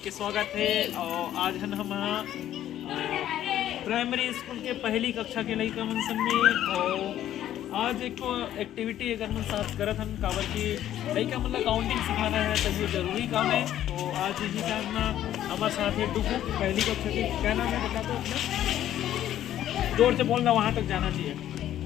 के स्वागत है। और आज हम प्राइमरी स्कूल के पहली कक्षा के लड़का मन सब में और आज एक एक्टिविटी अगर मन साथ करत हम काबर की लड़का मतलब काउंटिंग सिखाना है तो ये जरूरी काम है। तो आज इसी साथ में हमारे साथ है डुगू पहली कक्षा के। क्या नाम है बता दो अपना, जोर से बोलना, वहाँ तक जाना चाहिए।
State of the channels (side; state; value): right; quieter; 11.9 dB